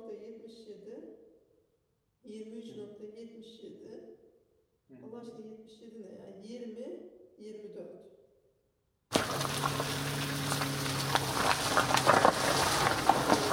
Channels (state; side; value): identical; both; correlation 1.00